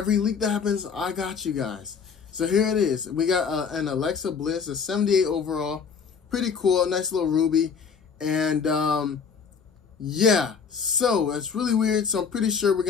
leak that happens, I got you guys. So here it is. We got an Alexa Bliss, a 78 overall. Pretty cool, nice little ruby. And yeah, so it's really weird. So I'm pretty sure we're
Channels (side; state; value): right; quieter; 6.2 dB